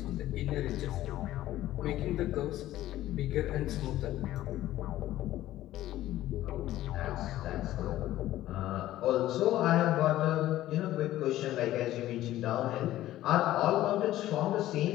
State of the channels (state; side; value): quieter; right; 14.4 dB